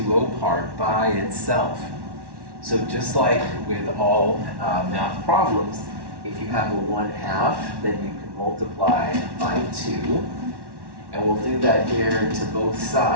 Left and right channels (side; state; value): left; late; 1.1 ms